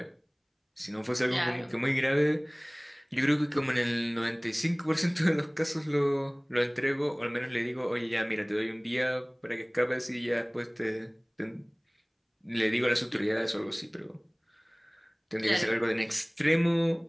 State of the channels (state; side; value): identical; both; correlation 1.00